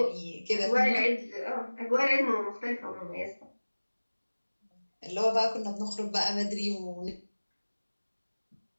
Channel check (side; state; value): both; inverted; correlation -1.00